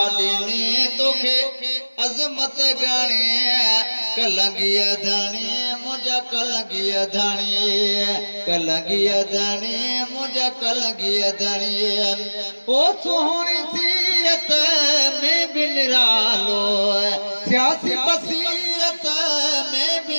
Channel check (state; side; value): inverted; both; correlation -1.00